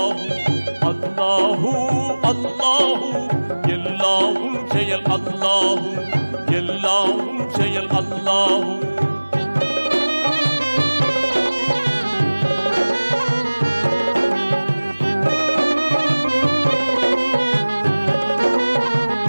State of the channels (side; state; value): both; inverted; correlation -1.00